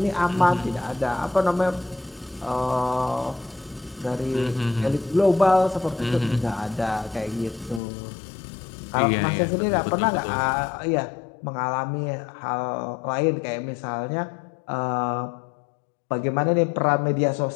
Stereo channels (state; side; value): drops out; right; at 7.8 s